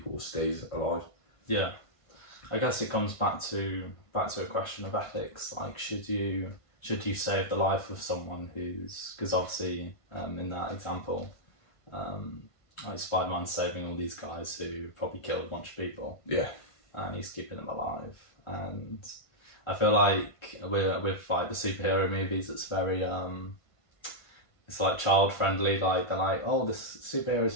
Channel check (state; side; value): late; right; 1.5 ms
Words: stays alive. Yeah. I guess it comes back to a question of ethics. Like, should you save the life of someone who's, because obviously in that example, like Spider-Man saving all these guys who probably killed a bunch of people. Yeah. And he's keeping them alive. And I feel like with like the superhero movies, it's very it's like child friendly. Like they're like, oh, this superhero's